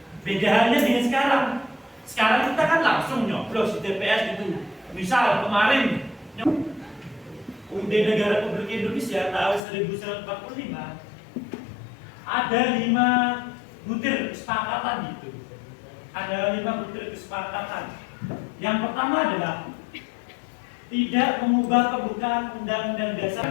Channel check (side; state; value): right; drops out; at 9.6 s